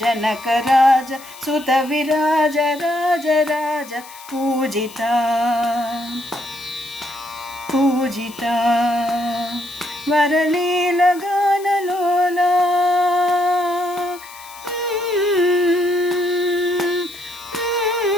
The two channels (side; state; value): left; noise; hiss, 19 dB below the sound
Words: జనకరాజ సుత విరాజ రాజ రాజ పూజిత పూజిత వరలీల గానలోలా